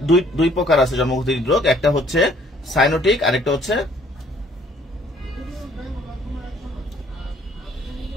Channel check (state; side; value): normal; both; correlation 0.60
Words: দুই প্রকার আছে জন্মগত হৃদরোগ। একটা হচ্ছে সাইনোটিক, আরেকটা হচ্ছে